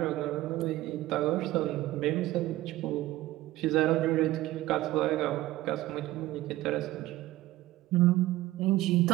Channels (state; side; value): quieter; left; 16.5 dB